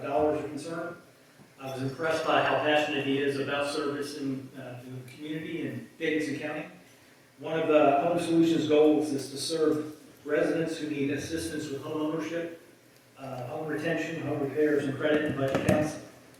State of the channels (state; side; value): identical; both; correlation 1.00